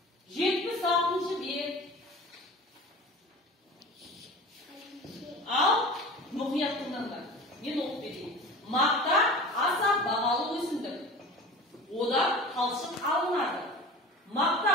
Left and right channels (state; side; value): normal; both; correlation 0.36